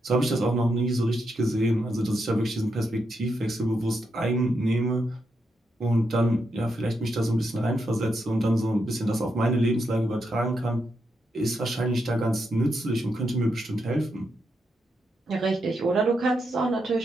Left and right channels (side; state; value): both; normal; correlation 0.83